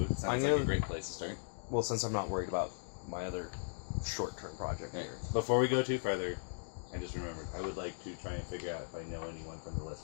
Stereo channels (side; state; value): right; silent; digital silence